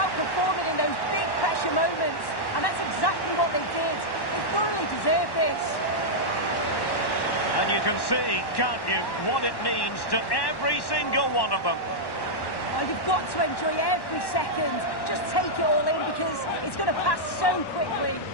performing in those big pressure moments, and that's exactly what they did. They thoroughly deserve this. And you can see, can't you, what it means to every single one of them. Well, you've got to enjoy every second. Just take it all in because it's going to pass so quickly.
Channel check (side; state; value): right; late; 1.1 ms